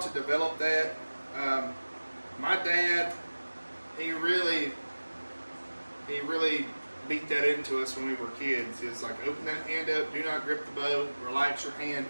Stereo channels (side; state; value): both; inverted; correlation -1.00